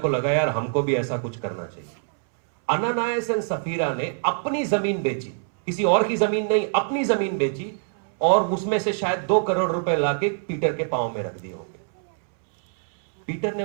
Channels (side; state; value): left; silent; 62 dB below the other